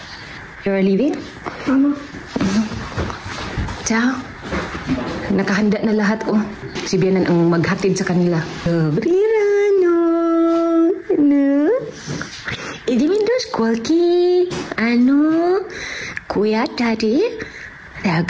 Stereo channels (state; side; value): identical; both; correlation 1.00